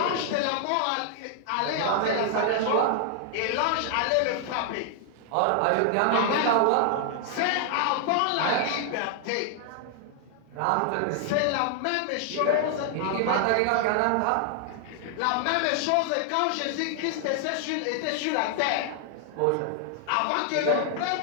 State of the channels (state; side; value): different; both; correlation 0.00